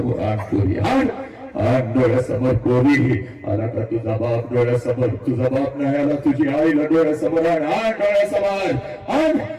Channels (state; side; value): identical; both; correlation 1.00